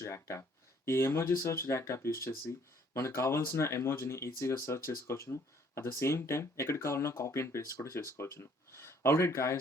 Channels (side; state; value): both; normal; correlation 0.62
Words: react app. ఈ emoji search react app use చేసి మనకు కావాల్సిన ఎమోజీని ఈజీగా సర్చ్ చేసుకోవచ్చును. అట్ ద సేమ్ టైం ఎక్కడికి కావాలన్నా కాపీ అండ్ పేస్ట్ కూడా చేసుకోవచ్చును. ఆల్రైట్